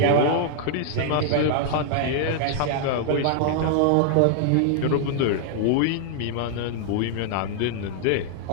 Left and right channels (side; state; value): both; different; correlation 0.00